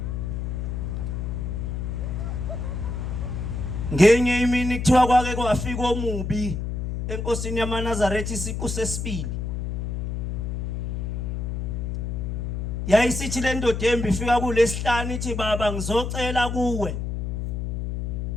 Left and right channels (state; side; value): noise; left; hum, 3 dB below the sound